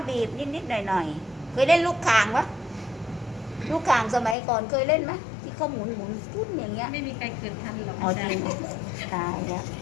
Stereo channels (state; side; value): drops out; right; at 4.4 s